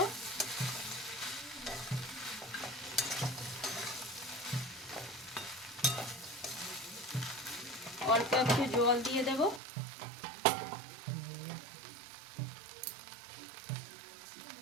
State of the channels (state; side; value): drops out; left; at 9.6 s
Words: অল্প একটু জল দিয়ে দেব।